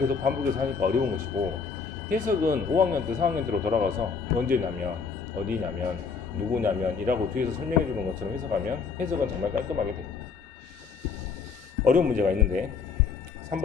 반복해서 하니까 어려운 것이고, 해석은 5학년 때 4학년 때로 돌아가서 언제냐면 어디냐면 누구냐면 이라고 뒤에서 설명해 주는 것처럼 해석하면 해석은 정말 깔끔하게 됩니다. 어려운 문제가 있는데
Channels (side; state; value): right; quieter; 5.5 dB